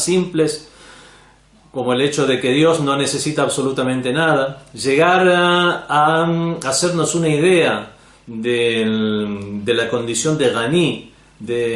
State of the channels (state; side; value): identical; both; correlation 1.00